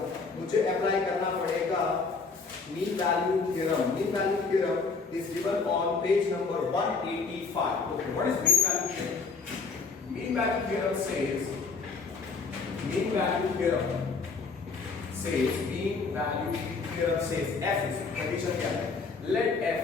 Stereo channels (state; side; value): quieter; right; 4.5 dB